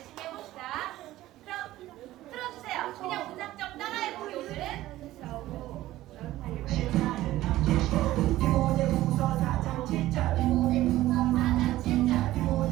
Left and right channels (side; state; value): left; quieter; 15.6 dB